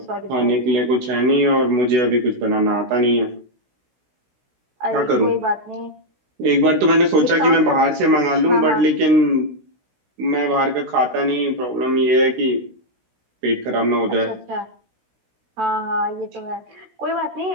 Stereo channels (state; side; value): late; left; 16 ms